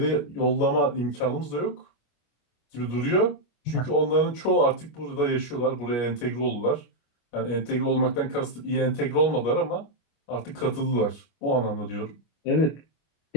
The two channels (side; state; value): right; late; 25 ms